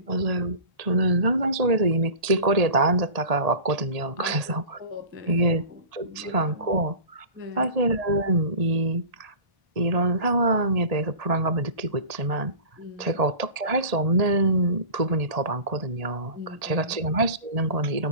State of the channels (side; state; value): left; late; 1.7 ms